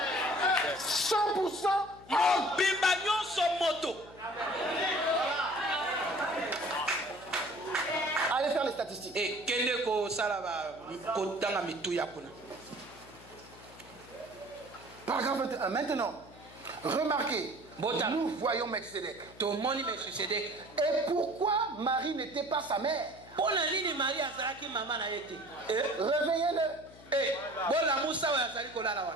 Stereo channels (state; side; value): noise; left; hum, 21 dB below the sound